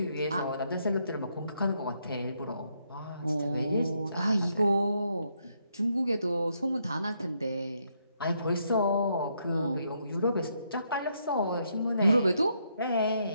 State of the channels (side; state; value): both; inverted; correlation -0.76